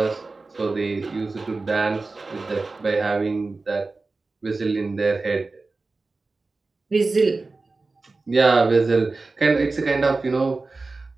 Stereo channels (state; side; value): quieter; left; 3.6 dB